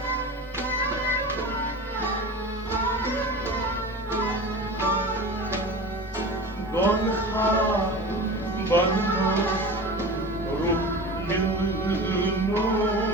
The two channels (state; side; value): normal; both; correlation 0.33